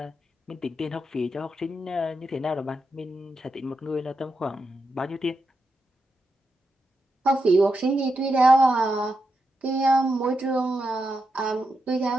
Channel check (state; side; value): normal; both; correlation 0.86